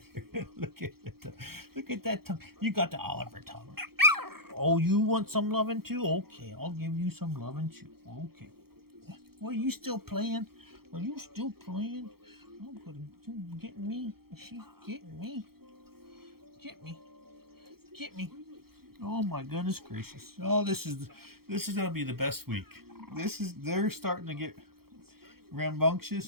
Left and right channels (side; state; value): left; late; 0.94 ms